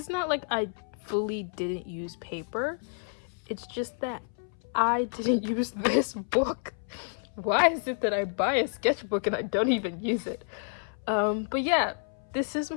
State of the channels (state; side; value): silent; right; 58 dB below the other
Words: not like I fully didn't use paper. It's just that I didn't use this book. Why is it that I buy a sketchbook and I don't even use it? But yeah, this is